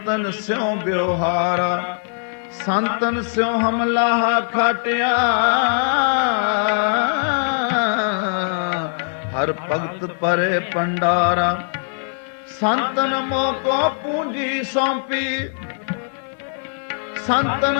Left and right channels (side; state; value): right; silent; digital silence